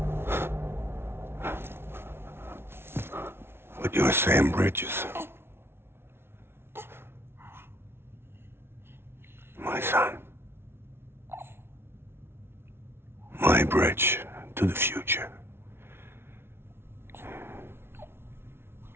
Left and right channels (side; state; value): left; late; 0.12 ms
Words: But you're Sam Bridges. My son. My bridge to the future.